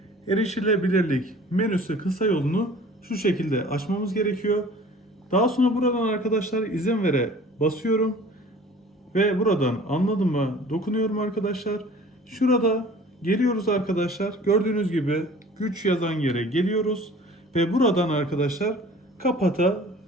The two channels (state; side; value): normal; both; correlation 0.47